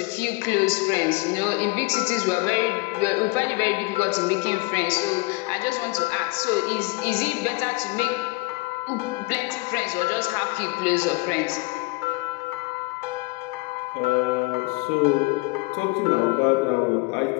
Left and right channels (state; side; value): quieter; right; 25.5 dB